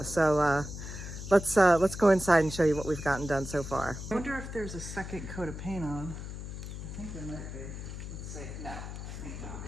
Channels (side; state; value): left; noise; hum, 8 dB below the sound